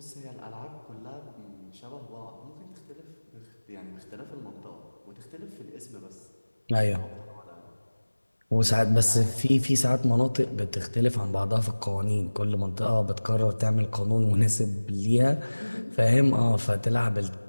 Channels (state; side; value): inverted; both; correlation -1.00